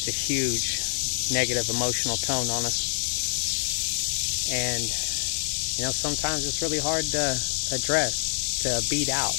a huge negative emotional tone on us. And, sometimes it's really hard to address, to beat out.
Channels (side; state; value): right; silent; 56 dB below the other